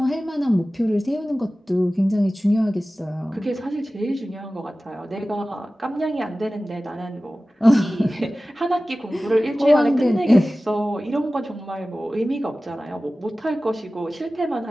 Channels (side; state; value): both; normal; correlation 0.96